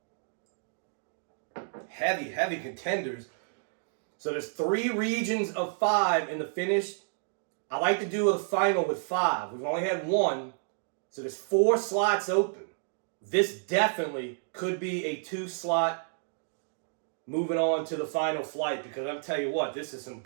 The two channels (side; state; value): left; silent; digital silence